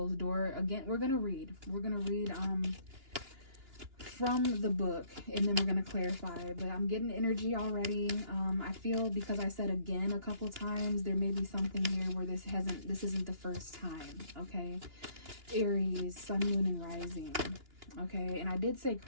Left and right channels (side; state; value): left; late; 2.9 ms